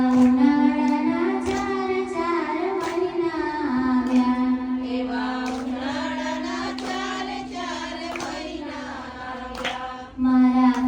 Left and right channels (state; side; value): identical; both; correlation 1.00